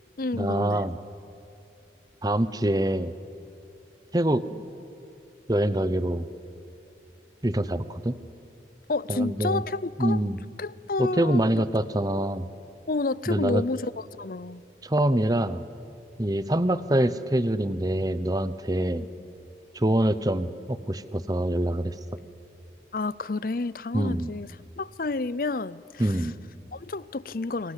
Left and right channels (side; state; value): both; normal; correlation 0.73